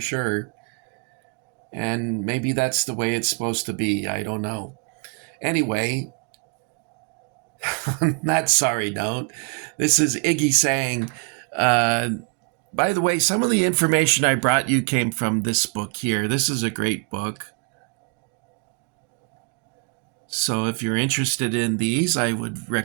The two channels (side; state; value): left; quieter; 36.8 dB